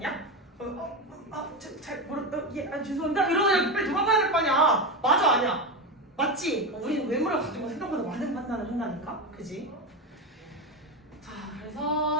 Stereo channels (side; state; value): both; normal; correlation 0.16